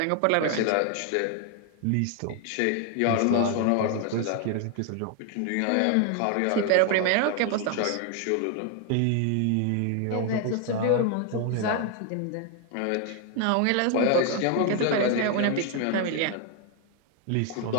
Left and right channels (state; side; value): different; both; correlation 0.01